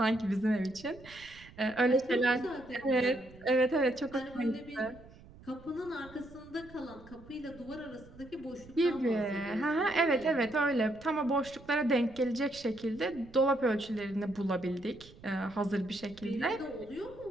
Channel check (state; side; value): noise; right; rumble, 21 dB below the sound